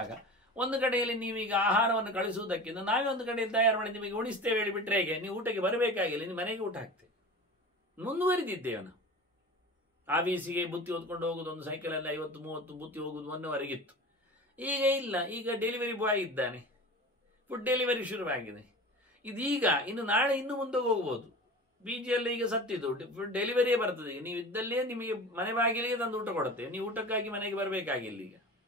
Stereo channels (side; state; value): both; normal; correlation 0.35